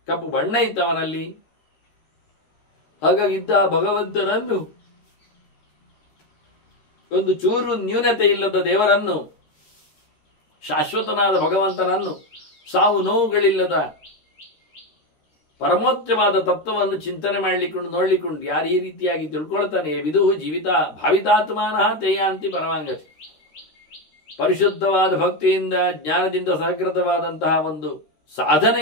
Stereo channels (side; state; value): right; late; 13 ms